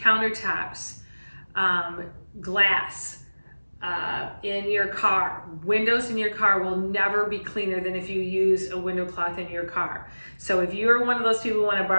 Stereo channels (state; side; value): inverted; both; correlation -1.00